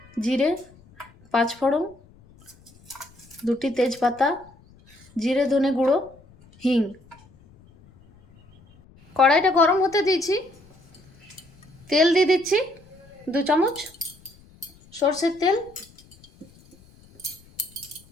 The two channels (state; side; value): noise; left; rumble, 27 dB below the sound